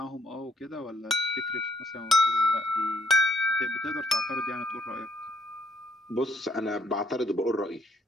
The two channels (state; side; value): normal; both; correlation 0.69